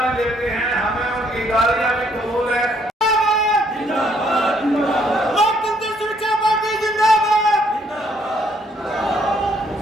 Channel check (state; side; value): normal; both; correlation 0.67